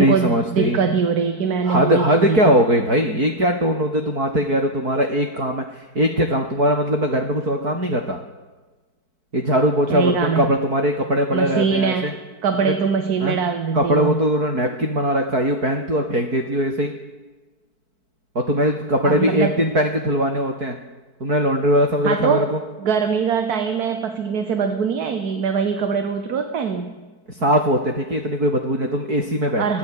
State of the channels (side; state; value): left; late; 4.6 ms